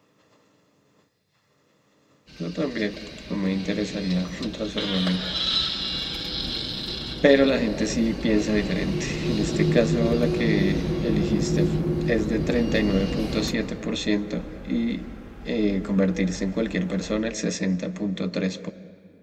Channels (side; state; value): both; identical; correlation 1.00